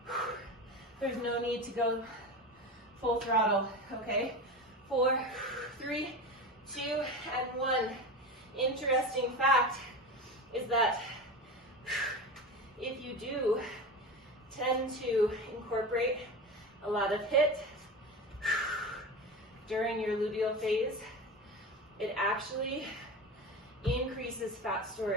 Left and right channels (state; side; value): normal; both; correlation 0.26